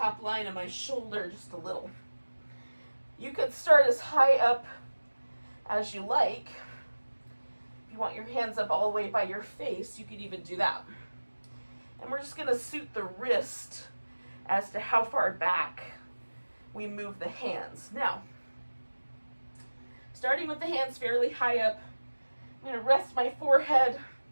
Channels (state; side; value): inverted; both; correlation -1.00